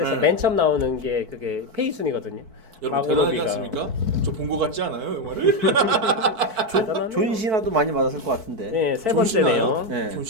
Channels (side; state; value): left; late; 4.5 ms